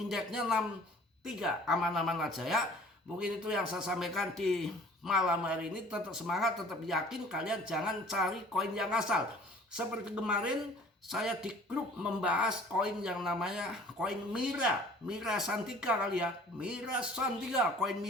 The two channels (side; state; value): both; normal; correlation 0.50